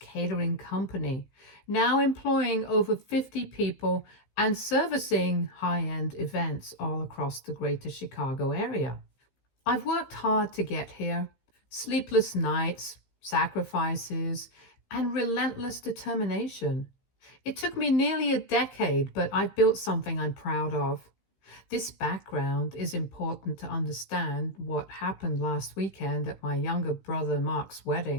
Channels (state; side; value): late; right; 15 ms